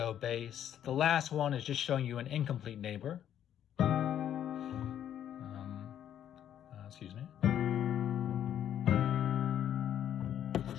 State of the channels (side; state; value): right; quieter; 10.3 dB